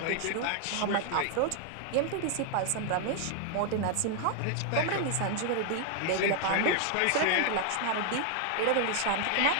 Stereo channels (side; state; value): both; different; correlation 0.00